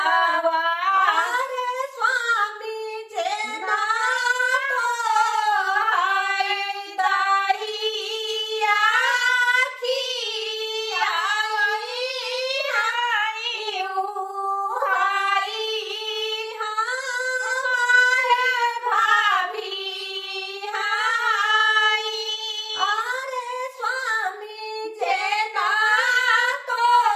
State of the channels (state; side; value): identical; both; correlation 1.00